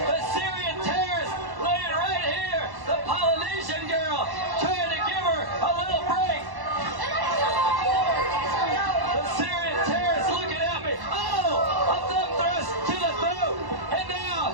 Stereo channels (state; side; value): late; left; 1.1 ms